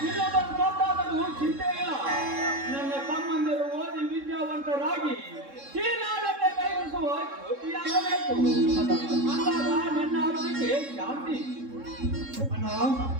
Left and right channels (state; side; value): late; left; 3.7 ms